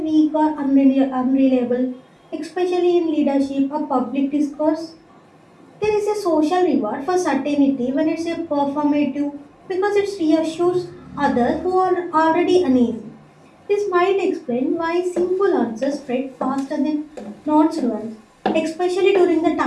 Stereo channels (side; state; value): both; identical; correlation 1.00